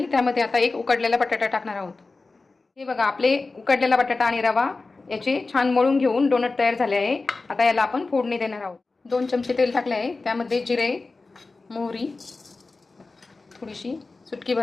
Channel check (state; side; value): quieter; right; 3.7 dB